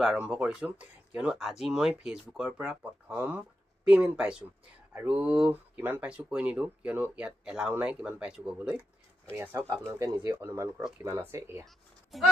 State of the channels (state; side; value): normal; both; correlation 0.88